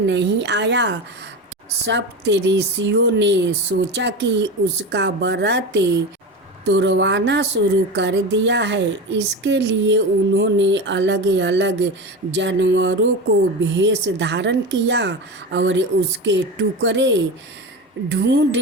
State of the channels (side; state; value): both; normal; correlation 0.24